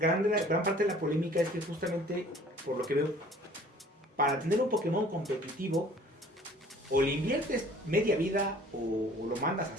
parte de la polémica es que justamente, por lo que veo, para tener un Pokémon competitivo, o le inviertes media vida o lo mandas a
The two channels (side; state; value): both; normal; correlation 0.52